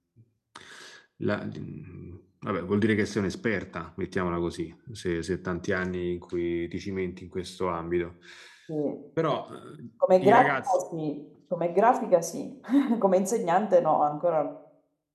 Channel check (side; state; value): both; identical; correlation 1.00